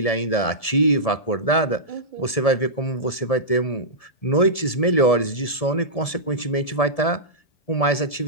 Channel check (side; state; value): right; late; 1.7 ms